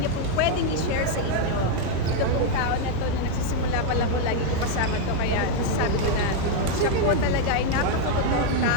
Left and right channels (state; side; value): different; both; correlation 0.01